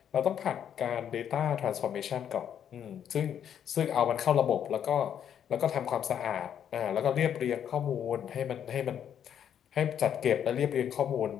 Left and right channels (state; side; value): quieter; right; 9.1 dB